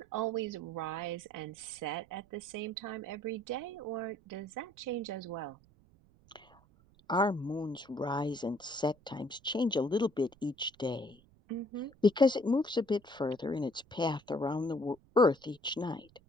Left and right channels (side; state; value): right; noise; rumble, 28 dB below the sound